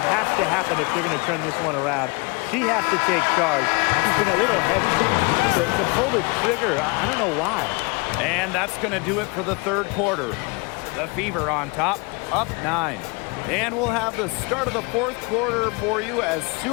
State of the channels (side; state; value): right; quieter; 29.0 dB